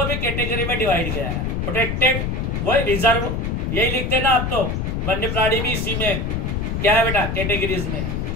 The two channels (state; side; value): noise; left; rumble, 1 dB below the sound